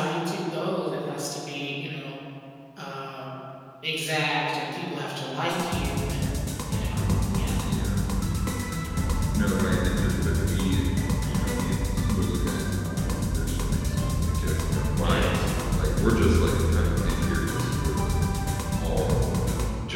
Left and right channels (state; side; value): identical; both; correlation 1.00